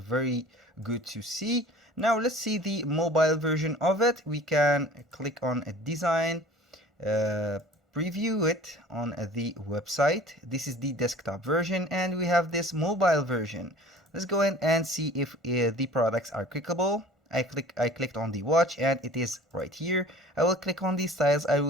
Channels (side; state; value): both; normal; correlation 0.46